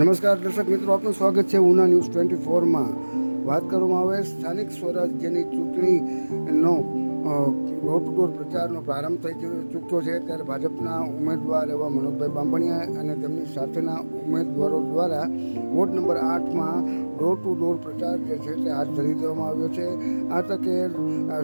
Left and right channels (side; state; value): both; inverted; correlation -1.00